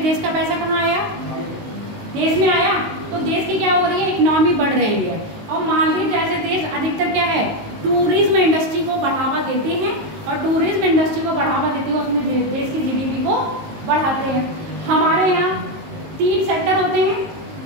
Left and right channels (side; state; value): left; late; 19 ms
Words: का पैसा कहाँ आया? देश में आया। तो देश की क्या हो रही है? इकोनॉमी बढ़ रही है। और मालदीव जैसे देश अधिकतर क्या है, टूरिज्म इंडस्ट्री को बढ़ावा देते हैं। और टूरिज्म इंडस्ट्री को बढ़ावा देते हुए अपने